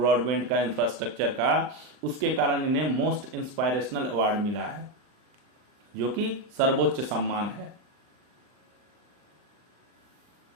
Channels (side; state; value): left; late; 39 ms